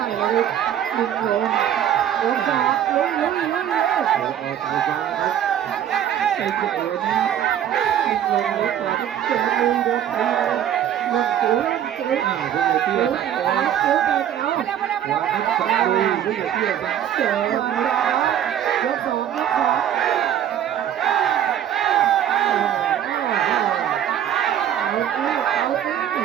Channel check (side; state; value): left; quieter; 10.3 dB